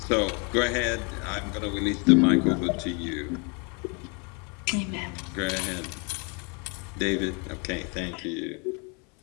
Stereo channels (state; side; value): quieter; right; 33.9 dB